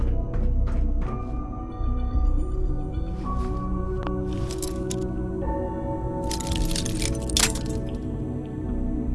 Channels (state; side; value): identical; both; correlation 1.00